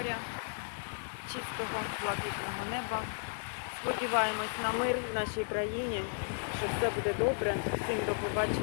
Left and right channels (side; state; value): right; silent; 55 dB below the other